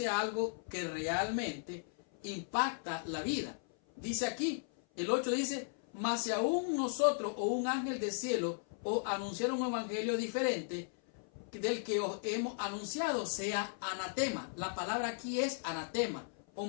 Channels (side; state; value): right; silent; 54 dB below the other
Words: algo que realmente impacta la vida. Dice aquí, el 8 dice, mas si aún nosotros o un ángel del cielo os anunciaron un evangelio diferente del que os hemos anunciado, sea anatema. La palabra aquí es anatema o